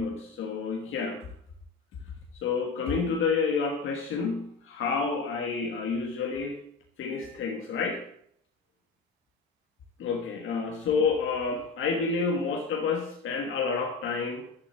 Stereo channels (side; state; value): right; quieter; 4.5 dB